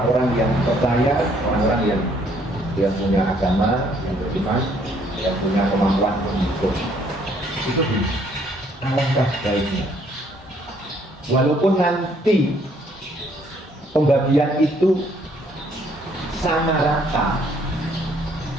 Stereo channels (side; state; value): both; normal; correlation 0.65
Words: yang percaya, orang-orang yang punya agama, yang beriman, yang punya kemampuan untuk itu alangkah baiknya. Walaupun nanti pembagian itu sama rata,